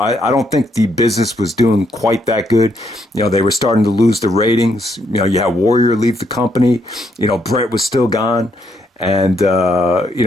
don't think the business was doing quite that good. You know, they were starting to lose the ratings. You know, you had Warrior leave the company. You know, Brett was still gone. And, you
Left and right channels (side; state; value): both; normal; correlation 0.74